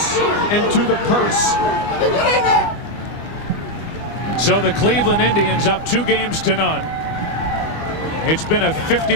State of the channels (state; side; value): late; right; 25 ms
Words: into the purse. So the Cleveland Indians up 2-0. It's been a